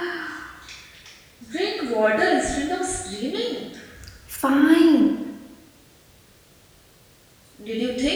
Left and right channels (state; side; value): identical; both; correlation 1.00